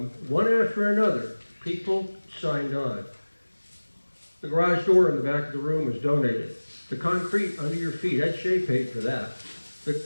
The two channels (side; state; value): both; inverted; correlation -1.00